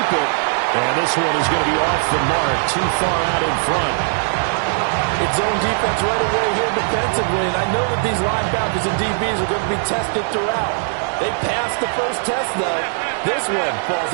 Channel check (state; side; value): silent; left; 59 dB below the other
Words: it. And this one is going to be off the mark. Too far out in front. It's zone defense right away here defensively. And I know that these linebackers and DBs are going to be tested throughout. They passed the first test, though. This one falls